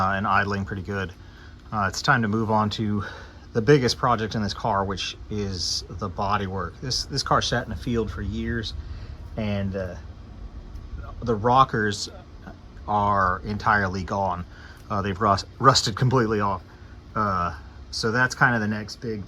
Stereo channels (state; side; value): identical; both; correlation 1.00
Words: idling pretty good, it's time to move on to the biggest project in this car, which is the body work. This car sat in the field for years, and the rockers are entirely gone. They've rusted completely off. So that's kind of the next big